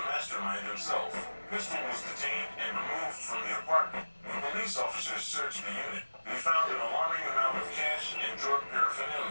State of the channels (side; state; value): both; inverted; correlation -1.00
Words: mastermind himself. Pistol was detained and removed from the apartment. When police officers searched the unit, they found an alarming amount of cash and drug